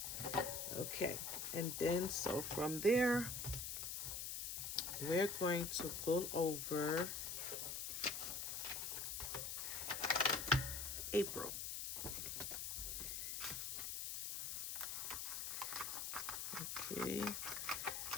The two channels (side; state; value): left; noise; hiss, 3 dB below the sound